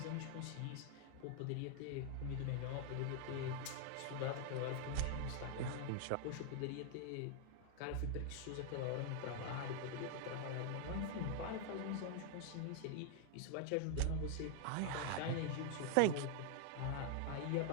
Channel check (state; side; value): different; both; correlation 0.00